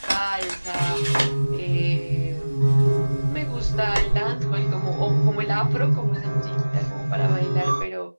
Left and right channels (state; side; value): inverted; both; correlation -1.00